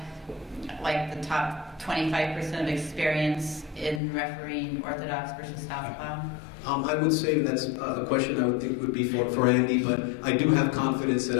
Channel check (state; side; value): drops out; right; at 4.0 s